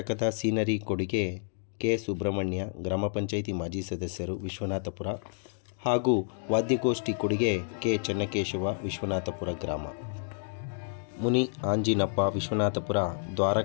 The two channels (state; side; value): silent; right; digital silence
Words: ಸೀನರಿ ಕೊಡುಗೆ ಕೆ. ಸುಬ್ರಹ್ಮಣ್ಯ, ಗ್ರಾಮ ಪಂಚಾಯಿತಿ ಮಾಜಿ ಸದಸ್ಯರು, ವಿಶ್ವನಾಥಪುರ ಹಾಗೂ ವಾದ್ಯಗೋಷ್ಠಿ ಕೊಡುಗೆ ಕೆ. ಚೆನ್ನಕೇಶವ, ವಿಶ್ವನಾಥಪುರ ಗ್ರಾಮ. ಮುನಿ ಆಂಜಿನಪ್ಪ, ವಿಶ್ವನಾಥಪುರ,